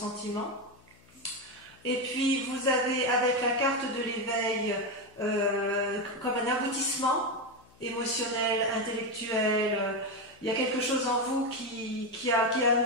Et puis vous avez avec la carte de l'éveil comme un aboutissement émotionnel, intellectuel. Il y a quelque chose en vous qui a un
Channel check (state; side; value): noise; left; hum, 28 dB below the sound